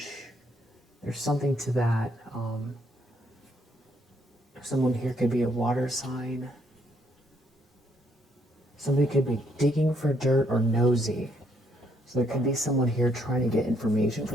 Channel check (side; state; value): both; normal; correlation 0.71